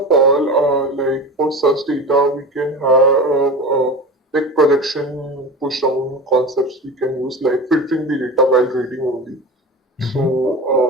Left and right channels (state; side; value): normal; both; correlation 0.30